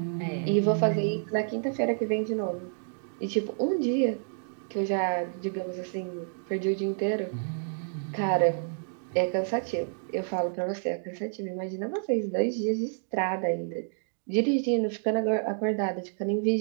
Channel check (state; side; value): silent; left; digital silence